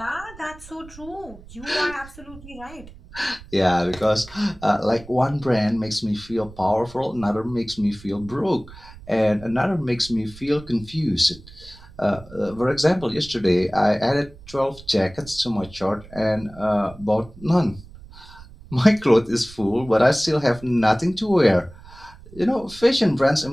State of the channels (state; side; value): noise; right; rumble, 19 dB below the sound